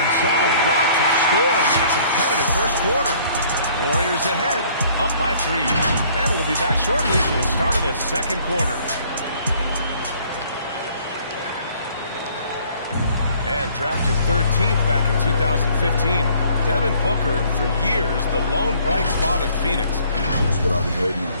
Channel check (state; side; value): inverted; both; correlation -0.58